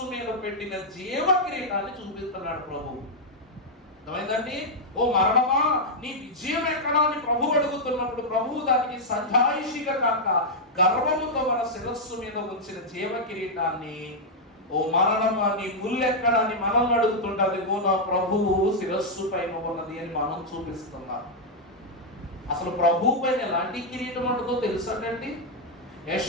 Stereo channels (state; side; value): normal; both; correlation -0.03